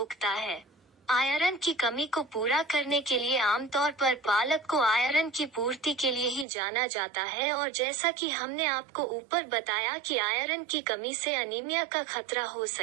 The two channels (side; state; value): left; drops out; at 6.5 s